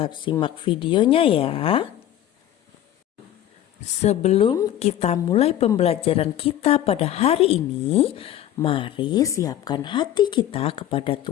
simak videonya ya. Sebelum kita mulai pembelajaran kita pada hari ini, mari siapkan hati kita kepada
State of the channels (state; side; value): quieter; right; 11.9 dB